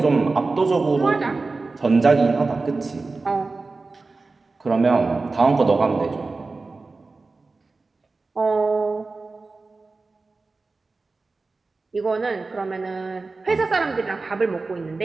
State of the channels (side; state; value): left; quieter; 3.7 dB